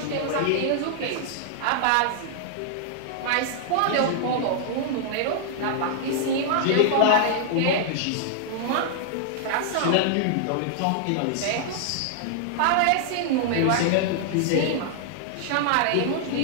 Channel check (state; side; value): different; both; correlation -0.01